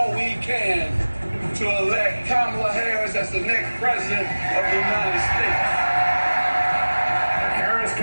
we can to elect Kamala Harris as the next president of the United States. The Harris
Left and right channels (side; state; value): both; inverted; correlation -1.00